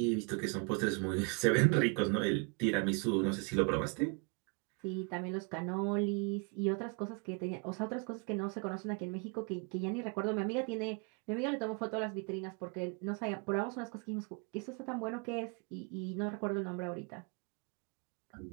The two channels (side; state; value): left; quieter; 34.5 dB